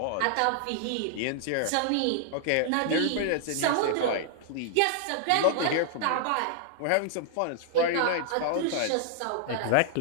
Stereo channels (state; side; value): different; both; correlation -0.01